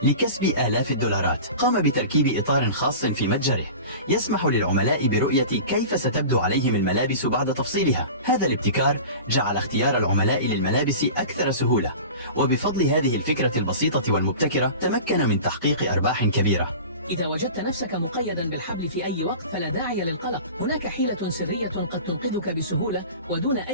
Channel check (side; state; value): both; inverted; correlation -0.36